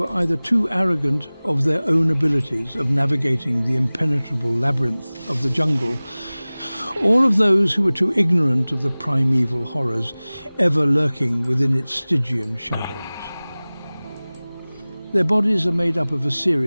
either too arrogant of their own abilities of navigating the impenetrable labyrinth of the jungle, or of those who were too ignorant of the primeval horrors ever lurking within its Stygian shadows. Their bodies are made up of a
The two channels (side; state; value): both; inverted; correlation -0.99